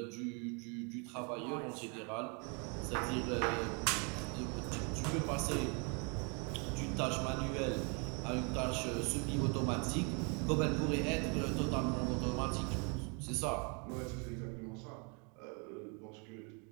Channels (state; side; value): quieter; left; 35.1 dB